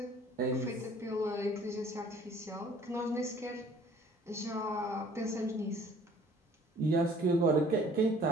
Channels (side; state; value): both; normal; correlation 0.54